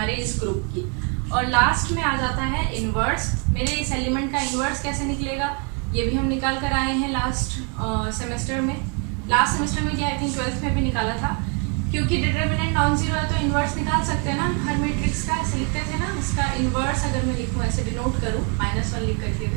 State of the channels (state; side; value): quieter; left; 37.4 dB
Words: इस ग्रुप की। और लास्ट में आ जाता है इन्वर्स। मेरे इस एलिमेंट का इन्वर्स कैसे निकलेगा ये भी हम निकाल कर आए हैं लास्ट सेमेस्टर में क्या आई थिंक 12th में भी निकाला था। क्योंकि डिटर्मिनेंट नॉन जीरो है तो इन्वर्स निकाल सकते हैं ना हर मैट्रिक्स का, ऐसे लिखते थे ना। इसका इन्वर्स अगर मैं लिखूँ ऐसे डिनोट करूँ -1 लिख करके